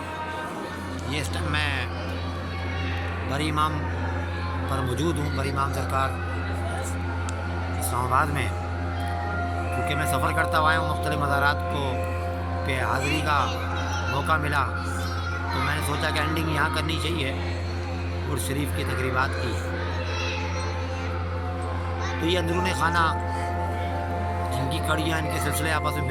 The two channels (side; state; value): both; identical; correlation 1.00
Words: یہ اس ٹائم میں بری امام پر موجود ہوں، بری امام سرکار اسلام آباد میں، کیونکہ میں سفر کرتا ہوا ہوں مختلف مزارات کو پہ حاضری کا موقع ملا، تو میں نے سوچا کہ اینڈنگ یہاں کرنی چاہیے عرس شریف کی تقریبات کی۔ تو یہ اندرون خانہ جن کی کڑیاں، ان کے سلسلے آپس میں